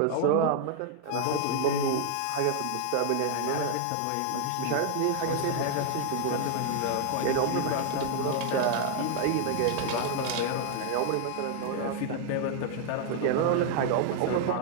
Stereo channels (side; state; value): both; different; correlation 0.00